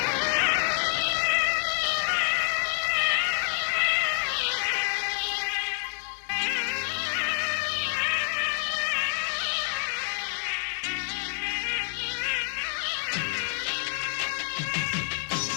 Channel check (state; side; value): silent; right; 60 dB below the other